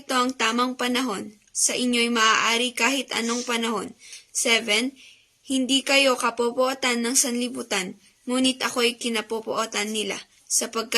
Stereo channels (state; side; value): identical; both; correlation 1.00